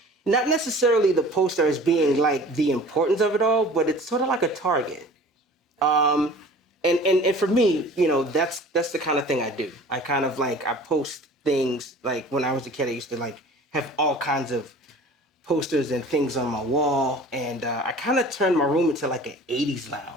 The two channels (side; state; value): both; normal; correlation 0.44